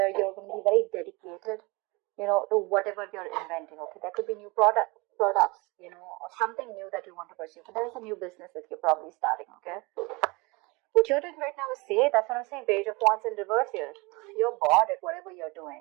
you're going to be very dedicated, to whatever you're inventing. Okay, there could be new products, or something new that you want to pursue. But there is a new business that you're probably starting. Okay, what you're doing right now is that's what I'm saying. Page of Wands in reverse here. You're bored at whatever you're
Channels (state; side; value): quieter; left; 26.1 dB